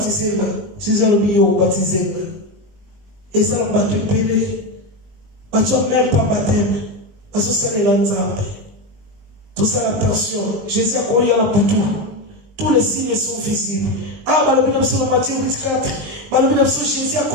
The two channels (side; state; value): left; late; 19 ms